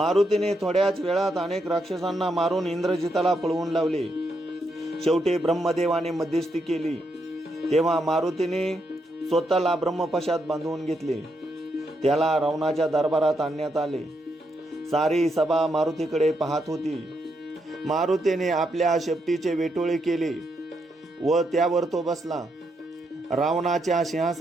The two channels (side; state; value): both; normal; correlation 0.80